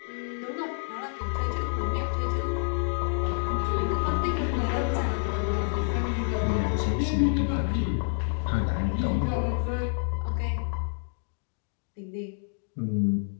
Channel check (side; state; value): right; silent; digital silence